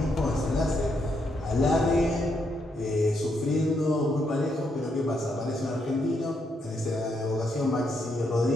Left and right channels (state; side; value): normal; both; correlation 0.78